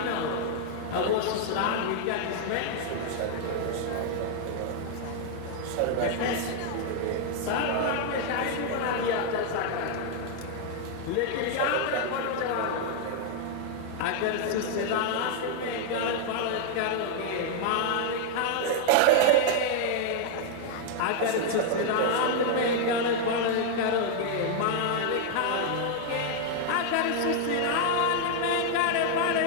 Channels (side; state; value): both; different; correlation 0.00